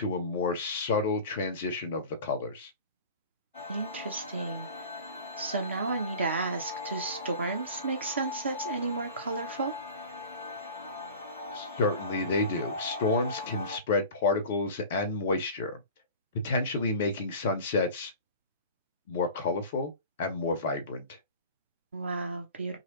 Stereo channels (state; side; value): inverted; both; correlation -0.38